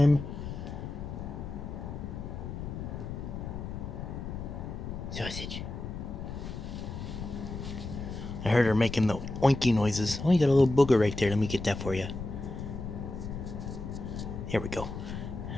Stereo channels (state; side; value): noise; left; rumble, 7 dB below the sound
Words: Sausage. I heard her making the oinky noises. Oh, you got a little booger right there. Let me get that for you. Here we go.